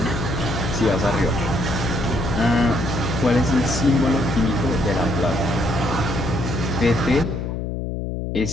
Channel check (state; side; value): noise; left; hum, 3 dB below the sound